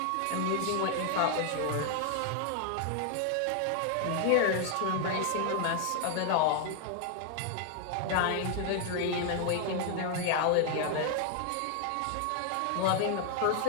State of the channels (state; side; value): different; both; correlation 0.00